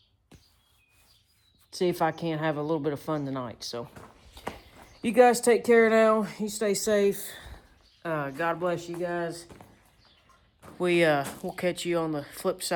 see if I can't have a little bit of fun tonight. So you guys take care now. You stay safe. God bless you guys. We'll catch you on the flip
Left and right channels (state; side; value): identical; both; correlation 1.00